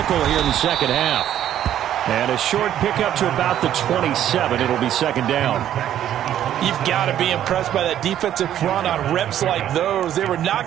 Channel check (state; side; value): quieter; left; 11.2 dB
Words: here in the second half. And a short pickup to about the 27. It'll be 2nd down. You've got to be impressed by that defensive front on reps like those. They were